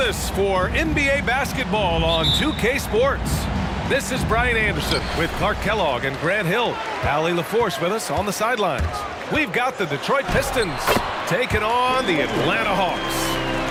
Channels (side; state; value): both; identical; correlation 1.00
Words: us for NBA basketball on 2K Sports. This is Brian Anderson with Clark Kellogg and Grant Hill. Allie LaForce with us on the sidelines. We've got the Detroit Pistons taking on the Atlanta Hawks.